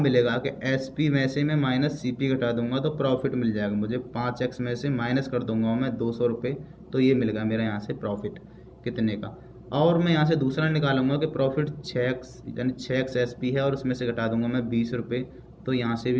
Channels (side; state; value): both; identical; correlation 1.00